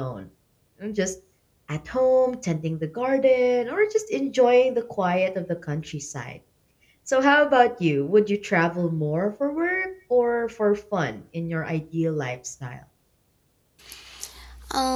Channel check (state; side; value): identical; both; correlation 1.00